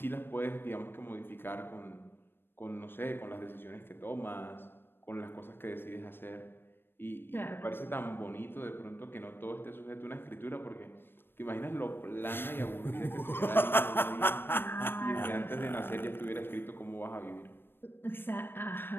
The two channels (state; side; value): late; right; 0.10 ms